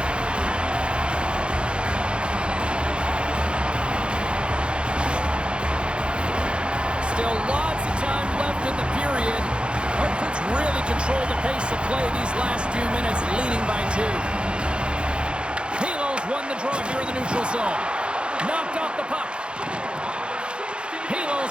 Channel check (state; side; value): late; left; 0.055 ms